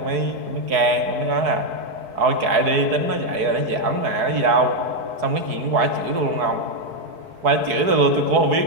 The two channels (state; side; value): late; left; 4.7 ms